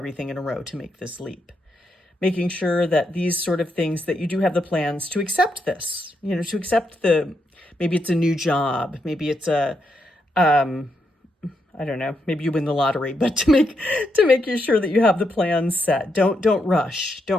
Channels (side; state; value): both; normal; correlation 0.81